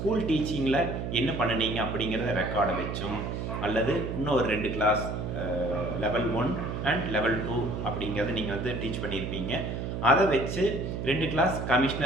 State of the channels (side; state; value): right; noise; hum, 4 dB below the sound